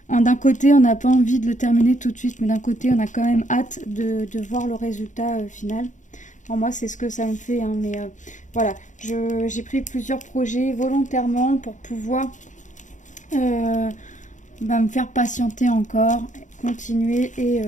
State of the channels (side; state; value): right; late; 0.36 ms